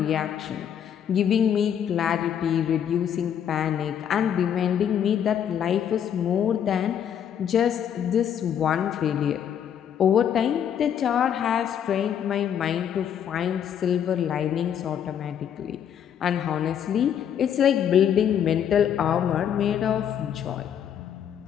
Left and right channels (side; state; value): right; quieter; 9.0 dB